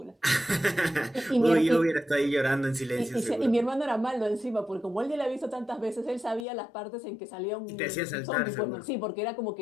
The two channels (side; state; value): right; drops out; at 6.5 s